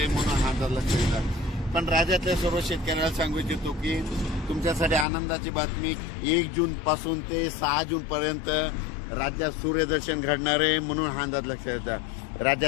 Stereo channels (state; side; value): drops out; right; at 5.1 s